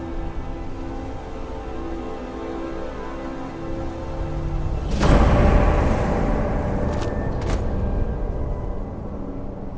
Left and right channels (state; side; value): identical; both; correlation 1.00